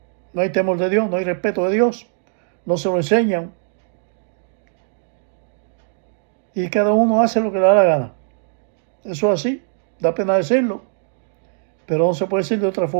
temor de Dios, no hay respeto de Dios, no se lo enseñan. Y cada uno hace lo que le da la gana. Eso es así, da pena decirlo, pero no se puede decir de otra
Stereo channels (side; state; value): left; silent; digital silence